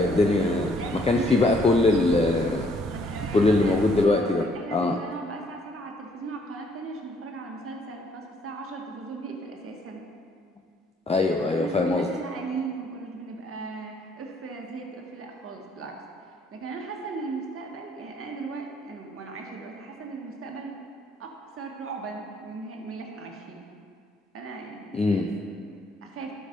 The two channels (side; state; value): both; normal; correlation 0.65